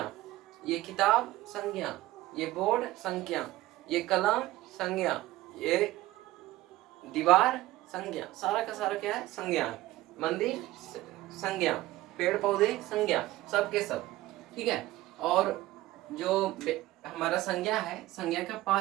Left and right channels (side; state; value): left; quieter; 16.9 dB